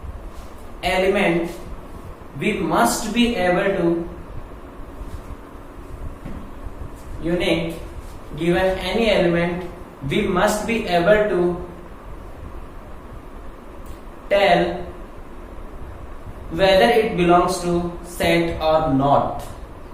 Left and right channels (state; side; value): identical; both; correlation 1.00